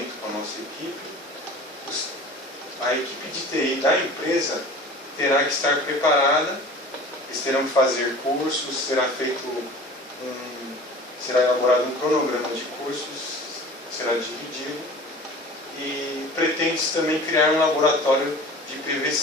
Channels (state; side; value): normal; both; correlation 0.41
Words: com a nossa equipe, a equipe de TI da empresa terá que estar preparada, eles terão que fazer cursos, será elaborado um cronograma de cursos, será dividido, e pretende-se também criar um laboratório de